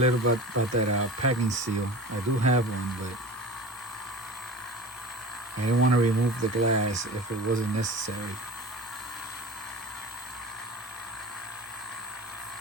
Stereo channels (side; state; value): both; normal; correlation 0.35